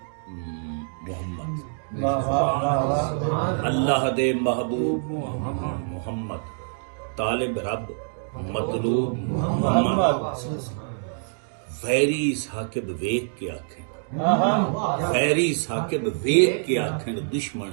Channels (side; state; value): left; silent; digital silence